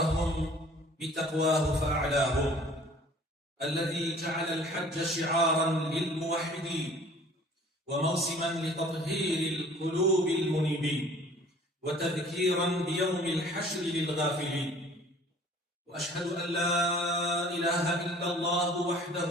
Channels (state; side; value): normal; both; correlation 0.50